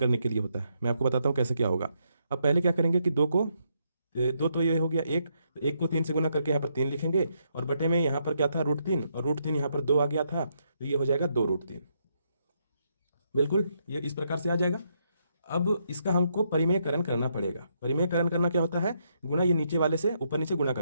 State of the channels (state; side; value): inverted; both; correlation -0.76